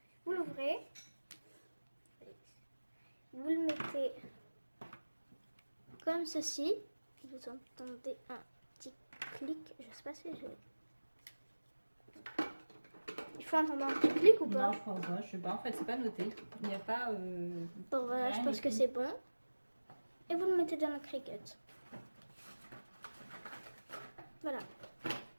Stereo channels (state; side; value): inverted; both; correlation -1.00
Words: Vous l'ouvrez. Vous le mettez comme ceci. Vous entendez un petit clic. Je sais pas si je... Il faut entendre un petit clic ou pas? Non, je pense pas, je sais pas, en fait c'est pas noté. Il n'y a pas... Bon voilà, je pense que c'est bon. Et vous le mettez dans la Cricut. Voilà.